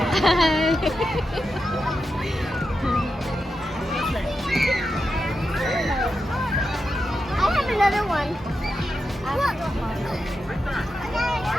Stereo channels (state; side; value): normal; both; correlation 0.88